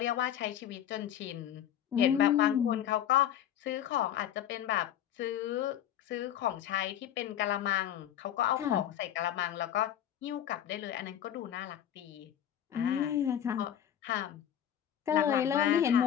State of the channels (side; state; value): right; quieter; 10.4 dB